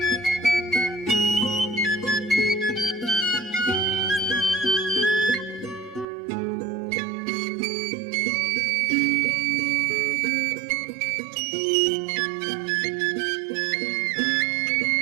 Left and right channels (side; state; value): left; drops out; at 6.1 s